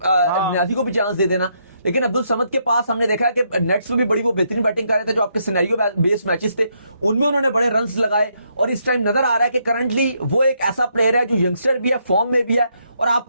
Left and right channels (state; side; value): inverted; both; correlation -0.76